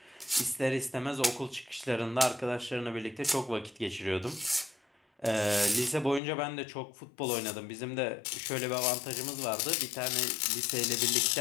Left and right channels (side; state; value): right; drops out; at 6.2 s